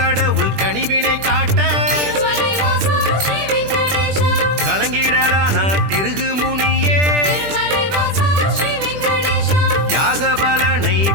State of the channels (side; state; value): left; late; 20 ms